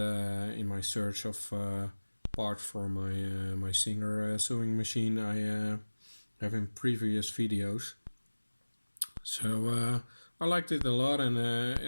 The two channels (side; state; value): both; inverted; correlation -1.00